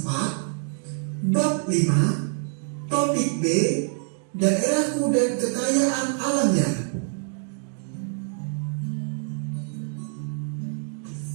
4 bab 5 topik B, daerahku dan kekayaan alamnya.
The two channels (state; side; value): silent; left; 61 dB below the other